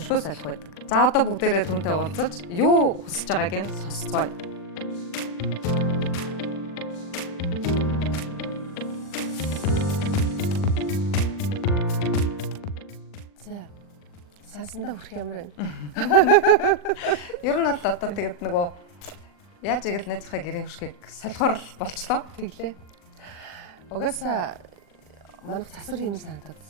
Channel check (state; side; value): late; right; 40 ms